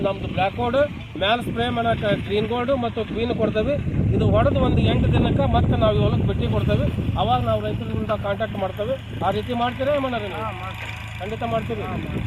ನಮ್ಮದು ಬ್ಲ್ಯಾಕ್ ಗೋಲ್ಡ್ ಮ್ಯಾಲೆ ಸ್ಪ್ರೇ ಮಾಡೋಕೆ ಗ್ರೀನ್ ಗೋಲ್ಡು ಮತ್ತು ಕ್ವೀನ್ ಕೊಡ್ತೇವೆ. ಇದು ಹೊಡೆದು ಒಂದು 8 ದಿನಕ್ಕೆ ಮತ್ತೆ ನಾವು ಹೊಲಕ್ಕೆ ಭೇಟಿ ಕೊಡ್ತೇವೆ. ಅವಾಗ ನಾವು ರೈತರಿಂದ ಕಾಂಟ್ಯಾಕ್ಟ್ ಮಾಡ್ತೇವೆ. ಆ ರೀತಿ ಮಾಡ್ತೀರಾ ಮಾಡೋದು? ಖಂಡಿತ ಮಾಡ್ತೀವಿ.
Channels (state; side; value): identical; both; correlation 1.00